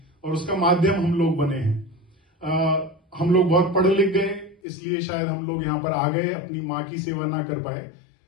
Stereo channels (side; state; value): right; drops out; at 4.6 s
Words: और उसका माध्यम हम लोग बने हैं। हम लोग बहुत पढ़ लिख गए, इसलिए शायद हम लोग यहाँ पर आ गए, अपनी माँ की सेवा ना कर पाए,